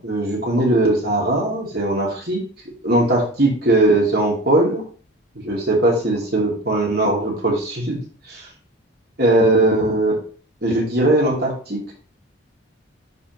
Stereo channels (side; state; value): both; normal; correlation 0.34